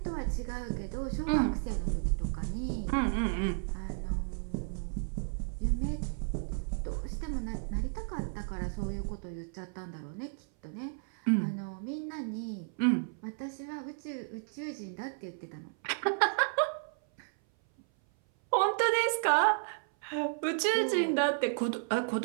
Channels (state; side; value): silent; left; 56 dB below the other